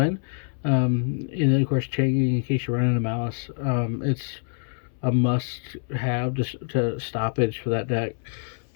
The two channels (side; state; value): right; silent; 61 dB below the other